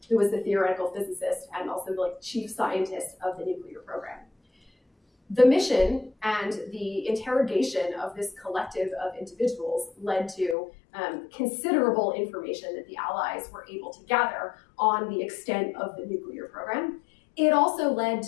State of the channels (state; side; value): drops out; right; at 10.6 s